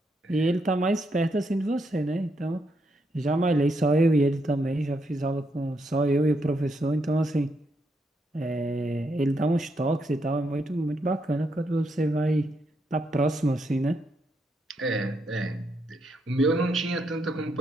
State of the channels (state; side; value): normal; both; correlation 0.79